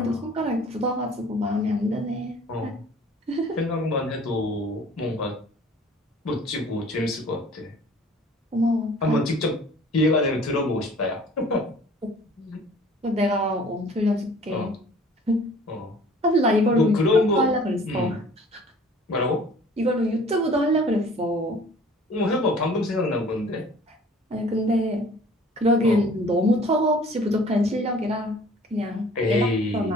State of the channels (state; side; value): normal; both; correlation 0.50